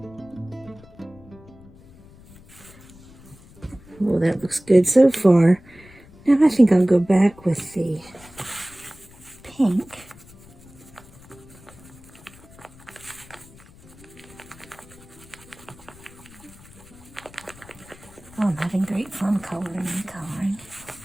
Well, that looks good so far. Now I think I'll go back with the pink. Oh, I'm having great fun coloring and coloring.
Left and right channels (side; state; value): left; noise; rumble, 22 dB below the sound